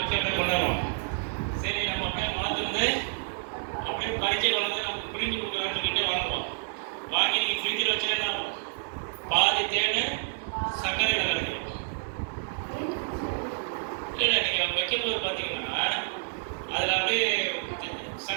அப்படியே கொண்டாடுவோம். சரி நம்ம அப்படியே மலத்துலேருந்து அப்படியே கடிச்சு கொண்டு நம்ம பிரிஞ்சு கொடுக்குறான்னு சொல்லிட்டு வாங்குவோம். வாங்கி நீங்கள் ஃப்ரிட்ஜில் வச்சு என்ன ஆகும், பாதி தேன் சர்க்கரையில் கிடைக்கும். இல்லை நீங்கள் வைக்கும்போது பார்த்தீங்கன்னா அதில் அப்படியே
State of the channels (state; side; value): silent; left; 57 dB below the other